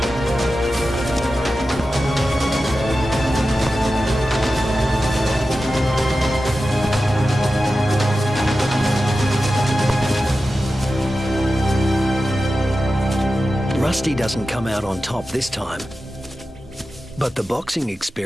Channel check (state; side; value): normal; both; correlation 0.93